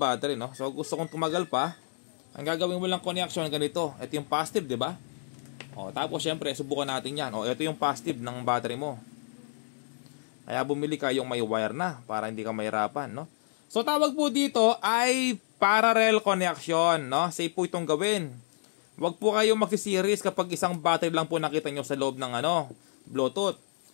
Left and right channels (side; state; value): right; silent; digital silence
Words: no? So gusto kong tumagal pa. Ang gagawin mo lang connection ganito. Ito yung positive, di ba? O, tapos syempre, subukan natin yan. O, ito yung positive ng battery mo. Kaya bumili ka yung may wire na para hindi ka mahirapan, no? So tawag po dito ay parallel connection, no? Safe po itong gawin. Huwag po kayong magsiseries kapag isang battery lang po nakita nyo sa loob ng Bluetooth.